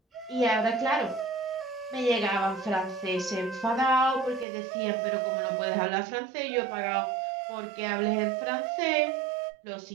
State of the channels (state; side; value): drops out; left; at 4.5 s